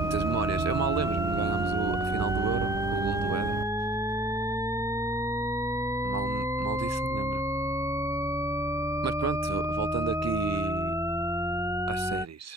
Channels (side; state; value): both; normal; correlation 0.52